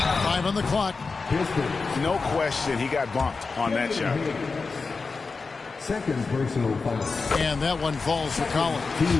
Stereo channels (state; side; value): quieter; right; 4.4 dB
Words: 5 on the clock. No question he got bumped on that shot. Second personal foul. And that one falls for Collins.